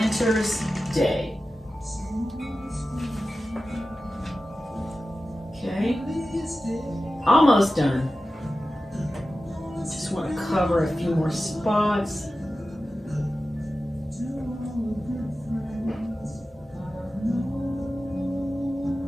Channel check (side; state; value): both; normal; correlation 0.94